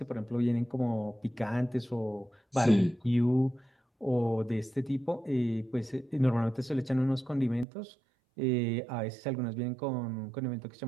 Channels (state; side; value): drops out; left; at 7.7 s